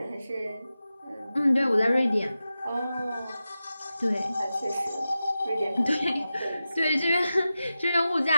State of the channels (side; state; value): both; inverted; correlation -0.93